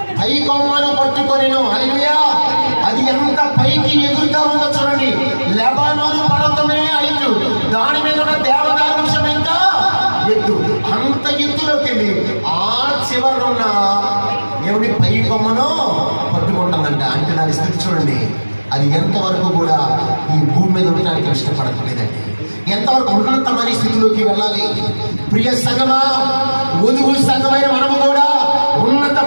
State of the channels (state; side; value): inverted; both; correlation -1.00